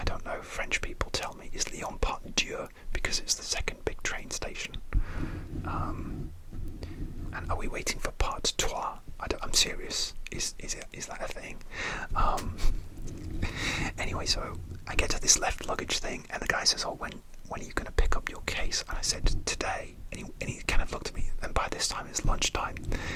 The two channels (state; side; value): identical; both; correlation 1.00